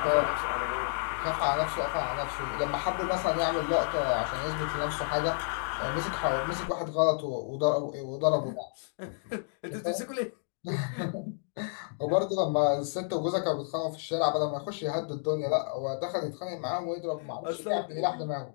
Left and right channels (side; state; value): right; silent; digital silence